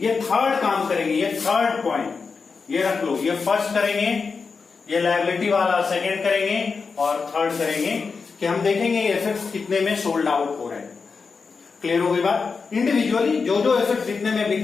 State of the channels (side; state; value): right; quieter; 5.0 dB